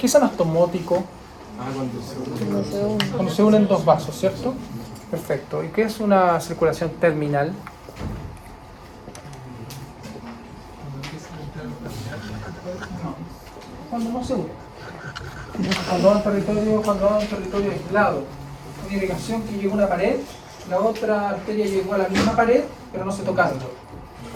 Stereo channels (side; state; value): both; identical; correlation 1.00